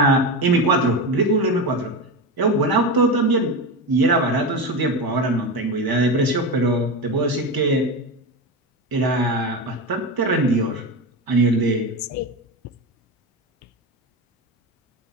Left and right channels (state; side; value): normal; both; correlation 0.20